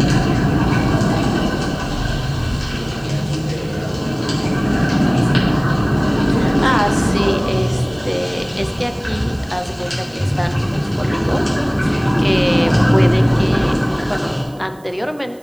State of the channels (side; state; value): right; noise; hiss, 28 dB below the sound